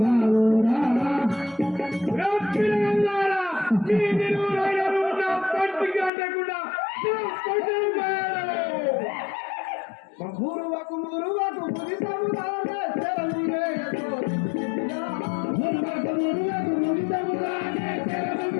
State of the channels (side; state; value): right; drops out; at 6.1 s